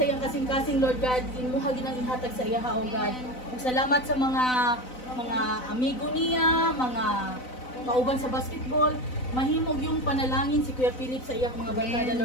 iyang kasing-kasing Lord God, imuha ginang ihatag sa iya o God. Ug salamat sa mga amigo niya, mga kauban sa basketball, mahimog yung panalangin si Kuya Philip sa iyang mga barkada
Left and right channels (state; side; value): late; right; 4.0 ms